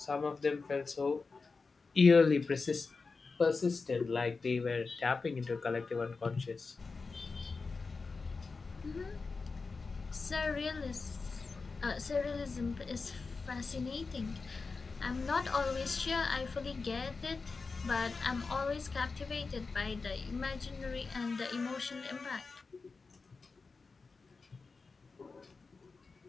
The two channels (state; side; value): quieter; right; 4.3 dB